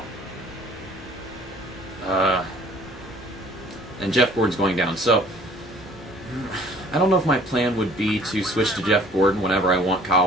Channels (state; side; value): normal; both; correlation 0.53